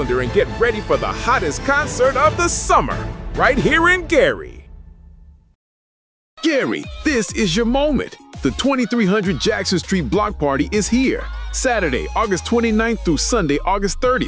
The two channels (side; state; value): both; identical; correlation 1.00